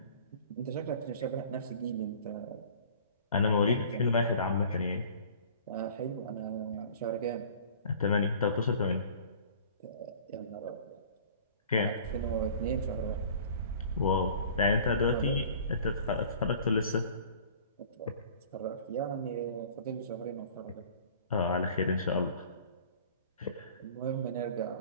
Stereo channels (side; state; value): both; inverted; correlation -0.47